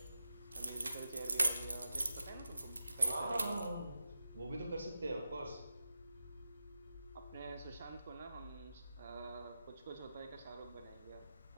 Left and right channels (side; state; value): both; inverted; correlation -0.90